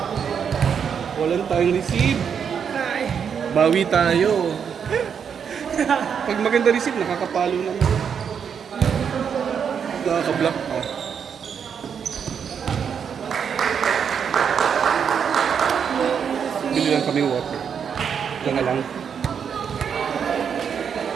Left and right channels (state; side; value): quieter; left; 7.3 dB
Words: Walang tayong receive. Bawi tayo. Pag maganda receive, nakakapalo naman. Nakaka-block pa. Bili lang kami water. Ito na lang.